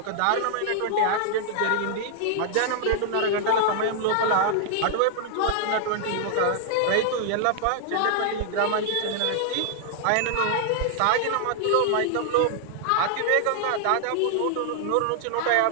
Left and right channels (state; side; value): different; both; correlation 0.00